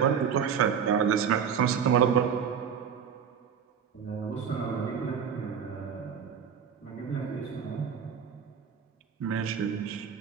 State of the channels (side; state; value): left; quieter; 7.4 dB